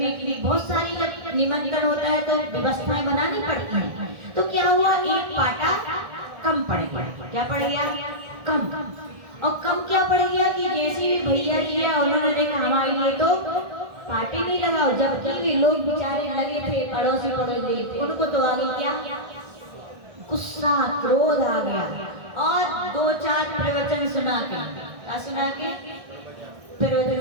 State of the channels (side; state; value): left; late; 1.6 ms